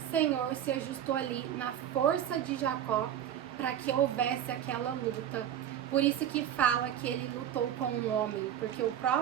Senhor se ajustou ali na força de Jacó para que houvesse aquela luta. Por isso que fala que ele lutou com um homem, porque o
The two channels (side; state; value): left; quieter; 10.3 dB